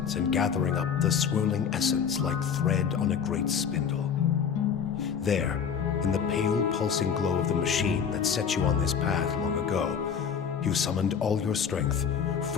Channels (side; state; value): right; quieter; 7.2 dB